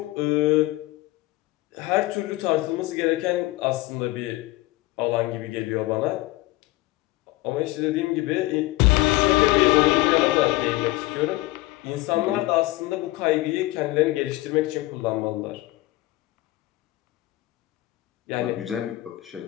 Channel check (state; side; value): quieter; right; 18.9 dB